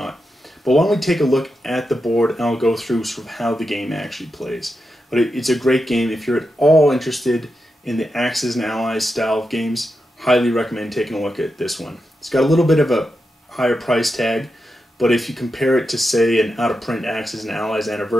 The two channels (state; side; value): normal; both; correlation 0.88